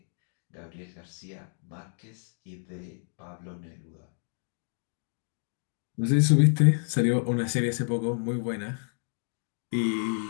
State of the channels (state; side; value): silent; right; digital silence